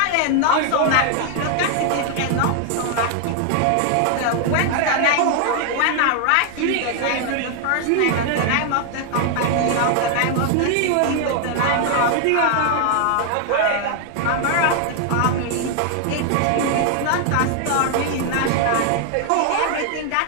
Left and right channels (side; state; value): both; different; correlation 0.00